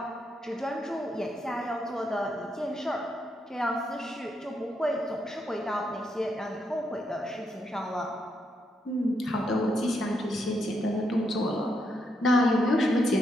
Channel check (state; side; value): normal; both; correlation 0.79